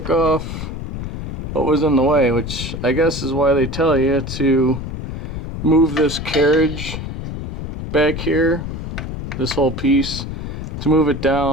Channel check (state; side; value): noise; left; rumble, 7 dB below the sound